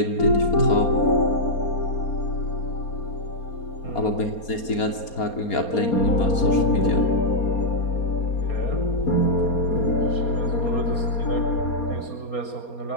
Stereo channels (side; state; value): right; late; 4.3 ms